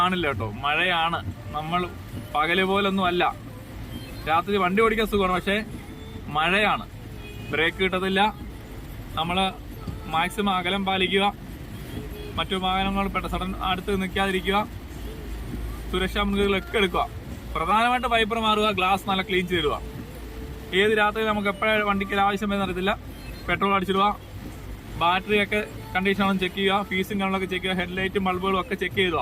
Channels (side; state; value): both; identical; correlation 1.00